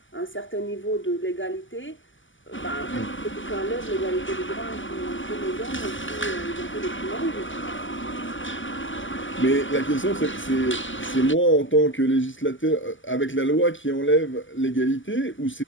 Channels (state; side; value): late; right; 0.56 ms